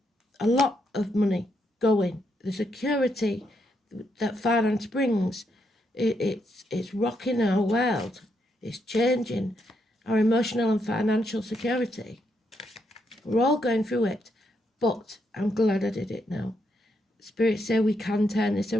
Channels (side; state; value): both; normal; correlation 0.79